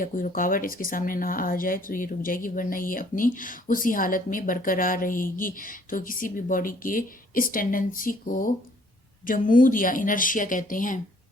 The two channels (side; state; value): both; normal; correlation 0.60